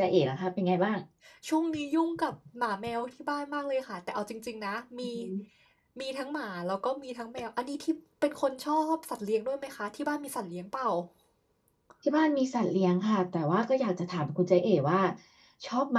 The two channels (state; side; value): identical; both; correlation 1.00